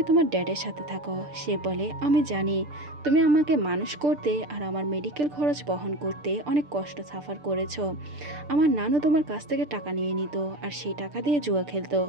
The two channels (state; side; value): late; left; 6.8 ms